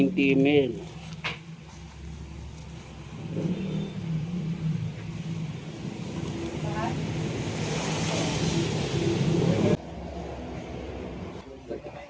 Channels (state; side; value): identical; both; correlation 1.00